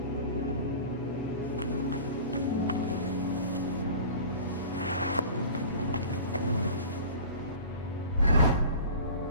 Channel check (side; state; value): both; inverted; correlation -0.39